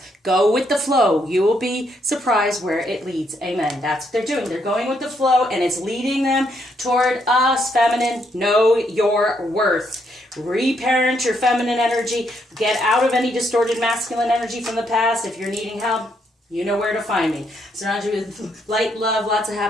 Go with the flow. You will be surprised where it leads. Amen. That's what they're doing. They're going with the flow, and it's leading them toward us, feminine. Know your worth. Reparent your feminine energy. Get out of any distorted masculine energy from the past. If you're needing help, you know where to find me. Surround you with light, love, lots of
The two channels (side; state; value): both; normal; correlation 0.75